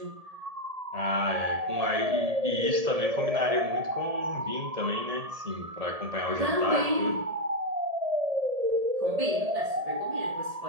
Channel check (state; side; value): late; left; 1.7 ms